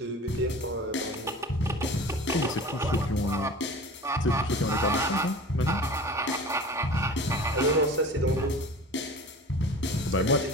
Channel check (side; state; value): both; normal; correlation 0.38